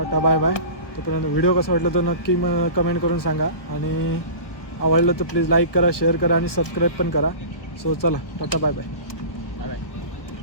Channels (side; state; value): right; late; 1.3 ms